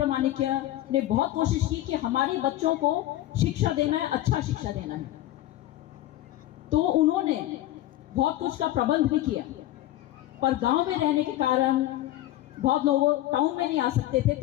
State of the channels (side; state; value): right; quieter; 14.8 dB